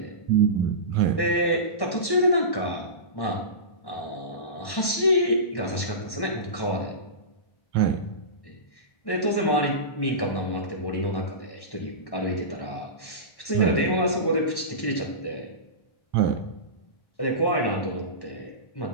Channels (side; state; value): right; late; 1.1 ms